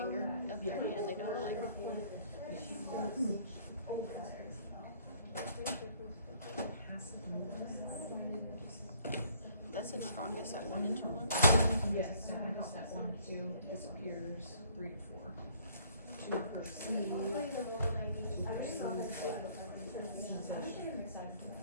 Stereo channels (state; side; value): inverted; both; correlation -0.60